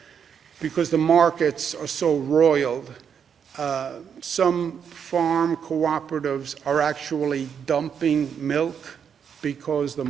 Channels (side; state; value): left; quieter; 7.5 dB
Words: because the markets are so roiled, some farm cooperatives are actually dumping milk because the